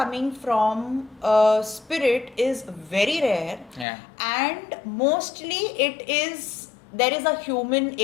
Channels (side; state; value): right; drops out; at 3.9 s